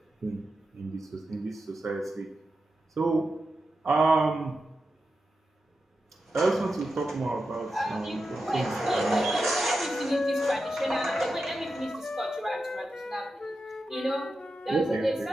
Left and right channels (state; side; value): normal; both; correlation 0.90